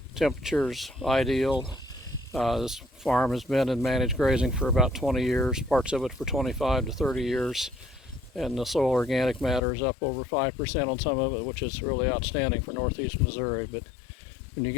temperatures ideal. This farm has been in managed grazing for about 20 years, parts of it for 25 to 30 years. And the soil organic matter is up over 5% on some of it, which is really outstanding for northeast Missouri. But when you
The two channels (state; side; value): drops out; right; at 9.6 s